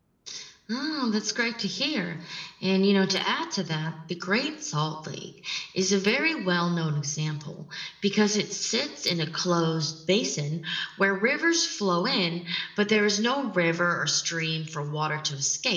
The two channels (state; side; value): identical; both; correlation 1.00